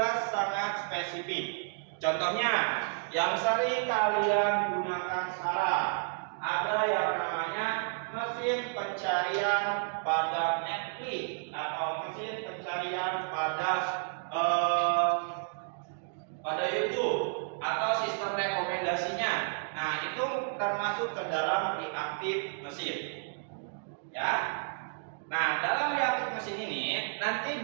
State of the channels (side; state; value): left; silent; digital silence